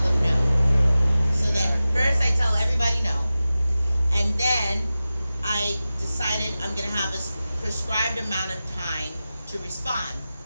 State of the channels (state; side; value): inverted; both; correlation -0.94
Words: no. So then first I tell everybody no, and then I decided I'm going to have a prescribed amount of time to respond.